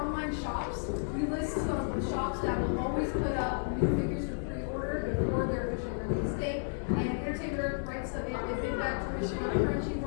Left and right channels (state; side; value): silent; right; digital silence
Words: shops, we list some shops that will always put up new figures for pre-order before their official release date. And Entertainment writes them in. They've been back to Wichita,